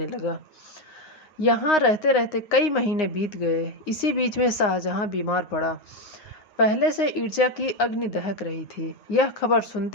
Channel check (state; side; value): late; right; 9.7 ms